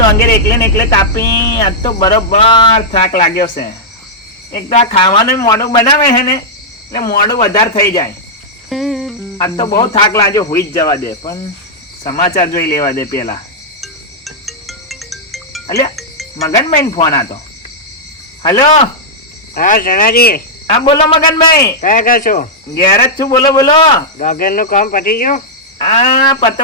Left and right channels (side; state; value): both; normal; correlation -0.07